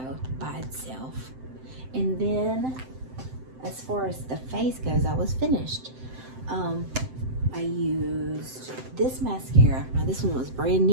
by itself. And then as far as the face goes, I was finished. I used this mascara. Now this one was brand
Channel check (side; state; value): left; late; 7.8 ms